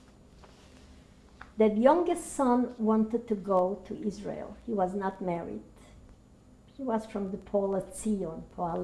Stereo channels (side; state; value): both; identical; correlation 1.00